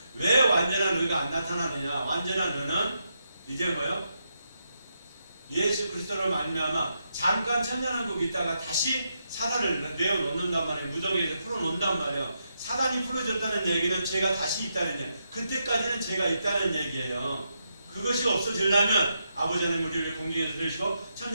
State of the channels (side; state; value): both; inverted; correlation -0.82